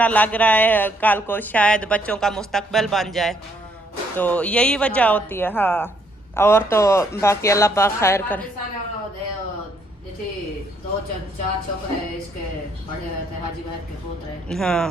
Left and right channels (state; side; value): normal; both; correlation 0.69